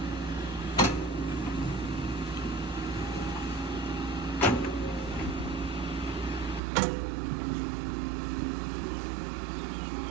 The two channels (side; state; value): left; drops out; at 6.6 s